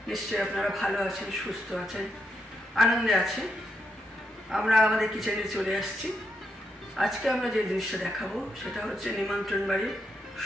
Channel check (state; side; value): normal; both; correlation 0.81